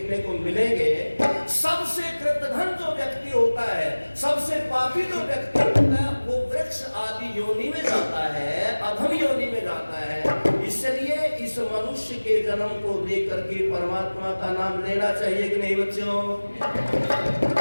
को मिलेंगे। सबसे कृतघ्न जो व्यक्ति होता है, सबसे पापी जो व्यक्ति होता है, वो वृक्ष आदि योनि में जाता है, अधम योनि में जाता है। इसलिए इस मनुष्य के जन्म को लेकर के परमात्मा का नाम लेना चाहिए कि नहीं बच्चों?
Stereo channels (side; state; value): both; inverted; correlation -1.00